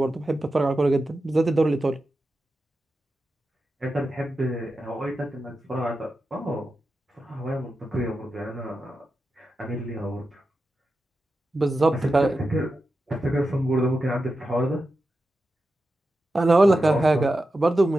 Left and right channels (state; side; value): normal; both; correlation 0.91